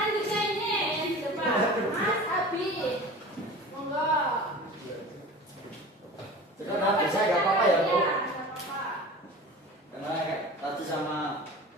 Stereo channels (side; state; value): both; normal; correlation 0.37